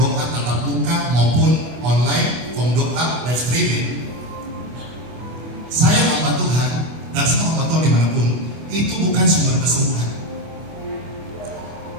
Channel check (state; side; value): late; left; 25 ms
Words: tatap muka maupun online, form doa, live streaming, saya hamba Tuhan dan semua hamba Tuhan dimanapun, itu bukan sumber kesembuhan.